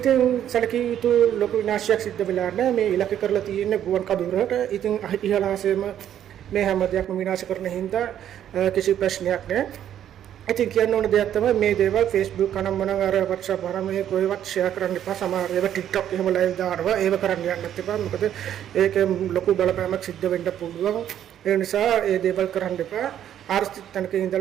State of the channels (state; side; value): quieter; left; 10.5 dB